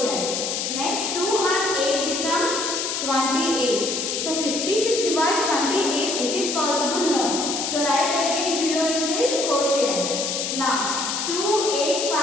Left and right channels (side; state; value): left; noise; hiss, 2 dB below the sound